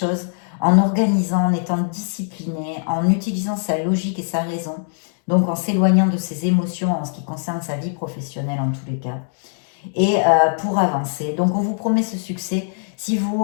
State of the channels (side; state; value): right; silent; digital silence